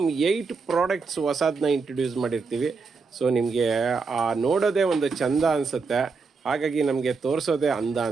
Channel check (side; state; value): left; quieter; 4.7 dB